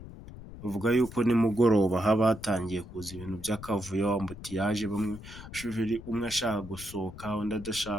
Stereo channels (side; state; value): left; noise; rumble, 14 dB below the sound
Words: bavuga yuko nimugoroba haba hatangiye kuza ibintu by'akavuyo, ambutiyaje, umwe ashaka gusohoka undi